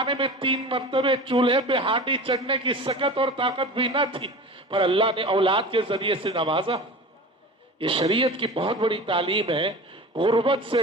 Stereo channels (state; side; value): normal; both; correlation 0.35